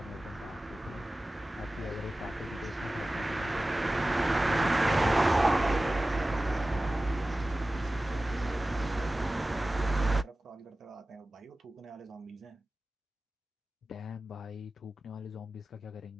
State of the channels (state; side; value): normal; both; correlation 0.96